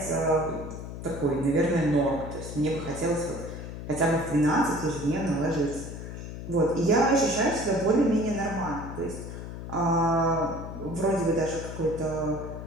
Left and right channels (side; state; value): left; noise; hum, 9 dB below the sound